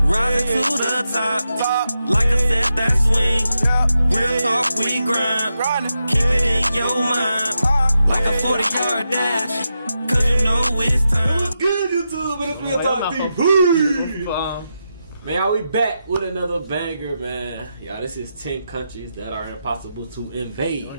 rising to the top, like a set that swing. Real talk, we grind, keep it in your mind, like a 40-yard dash, cause you know it's time. What's good, YouTube? It's Real Talk TV. Man, we back with another banger, man. Y'all, this is 10 countries that are impossible to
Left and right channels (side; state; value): both; inverted; correlation -0.87